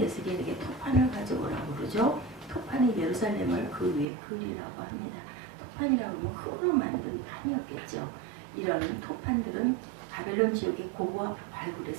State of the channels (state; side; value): drops out; left; at 4.0 s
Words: 에스겔에게 토판을 가져오라고 그러죠. 토판이 예루살렘을 그 위에 그리라고 합니다. 토판이라고 하면 흙으로 만든 판이었겠죠. 이런 토판들은 바벨론 지역의 고고와